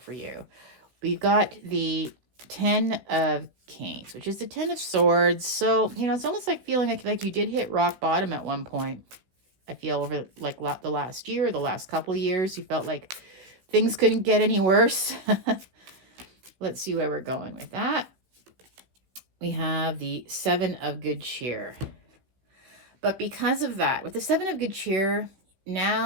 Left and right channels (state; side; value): late; left; 15 ms